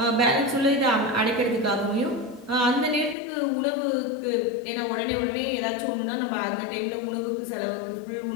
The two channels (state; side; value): drops out; right; at 3.2 s